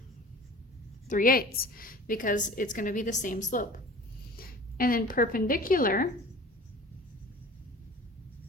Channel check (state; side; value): normal; both; correlation 0.42